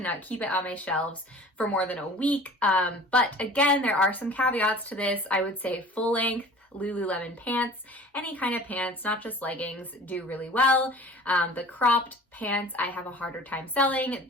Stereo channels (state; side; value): normal; both; correlation 0.44